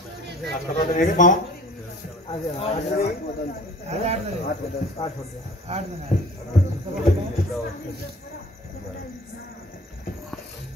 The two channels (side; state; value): both; normal; correlation 0.49